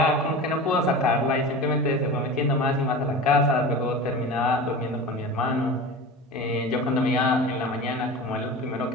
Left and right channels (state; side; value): normal; both; correlation 0.32